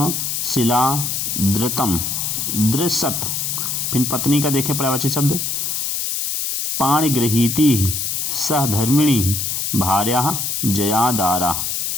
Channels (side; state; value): left; noise; hiss, 1 dB below the sound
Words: शिला, धृतम, दृसत। फिर पत्नी का देखें पर्यायवाची शब्द पाणिगृहीति, सहधर्मिणी, भार्या, जयादारा।